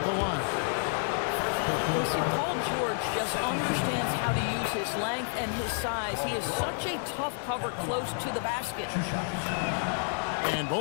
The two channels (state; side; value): silent; right; digital silence